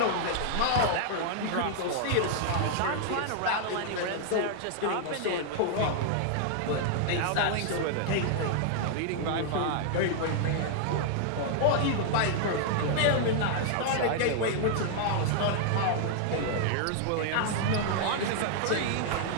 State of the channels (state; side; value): different; both; correlation -0.01